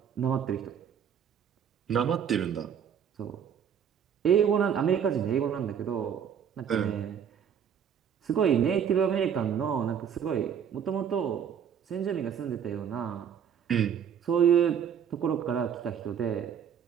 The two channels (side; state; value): left; quieter; 8.2 dB